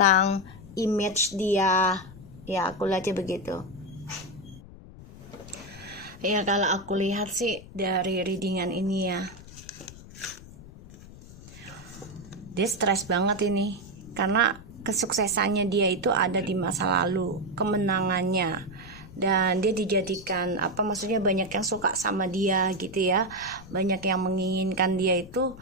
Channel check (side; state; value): left; noise; rumble, 17 dB below the sound